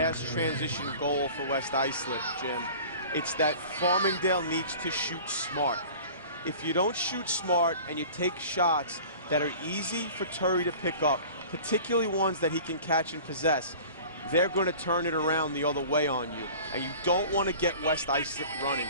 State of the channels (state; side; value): inverted; both; correlation -0.42